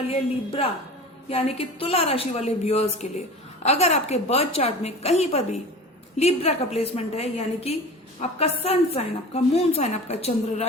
है लिब्रा यानी कि तुला राशि वाले व्यूअर्स के लिए। अगर आपके बर्थ चार्ट में कहीं पर भी लिब्रा का प्लेसमेंट है यानी कि आपका सन साइन, आपका मून साइन, आपका चंद्र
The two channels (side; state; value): both; normal; correlation 0.36